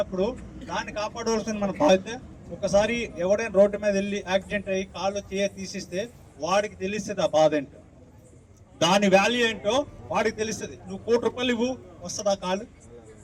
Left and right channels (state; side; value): identical; both; correlation 1.00